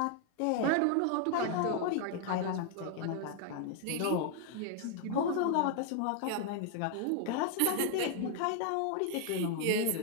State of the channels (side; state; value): both; different; correlation 0.00